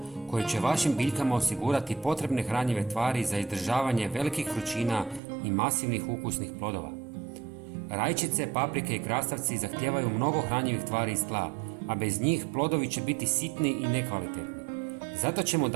koje će vašim biljkama osigurati potrebne hranjive tvari za izdržavanje velikih vrućina i masivnih ukusnih plodova. Rajčice, paprike i krastavci zahtijevaju mnogo hranjivih tvari iz tla, a bez njih plodovi će biti sitni i nekvalitetni. Zato ćemo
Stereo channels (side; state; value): left; drops out; at 5.2 s